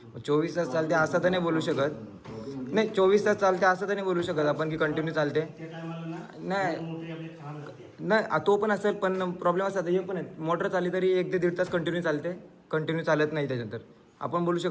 मग 24 तास चालते असं तर नाही बोलू शकत. नाही 24 तास चालते असं तर नाही बोलू शकत आपण की कंटिन्यू चालते. नाही तो पण असेल पण प्रॉब्लेम असतात हे पण आहे. मोटर चालली तरी 1 ते 1.5 तास कंटिन्यू चालते. कंटिन्यू चालत नाही त्याच्यानंतर आपण बोलू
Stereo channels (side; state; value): both; identical; correlation 1.00